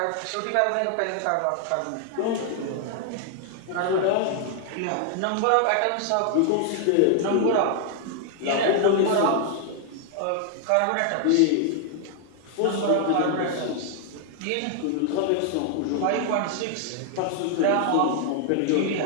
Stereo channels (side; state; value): both; different; correlation 0.00